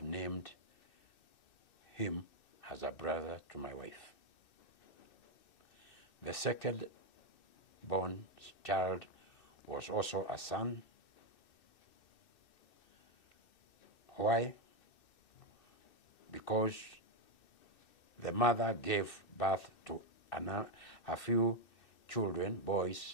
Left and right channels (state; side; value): late; right; 2.6 ms